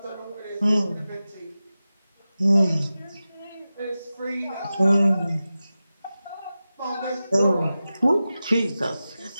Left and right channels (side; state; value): both; inverted; correlation -0.94